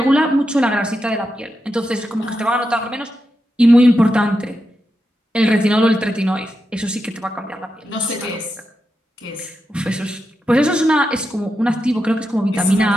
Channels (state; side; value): normal; both; correlation 0.88